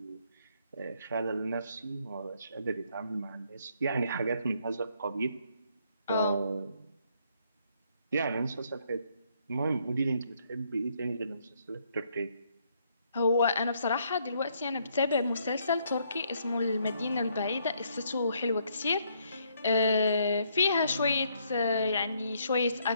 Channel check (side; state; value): both; inverted; correlation -0.71